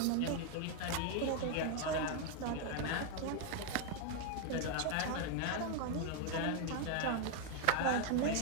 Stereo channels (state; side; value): different; both; correlation 0.01